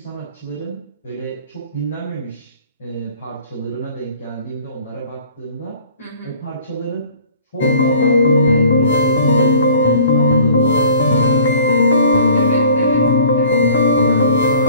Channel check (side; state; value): both; inverted; correlation -0.51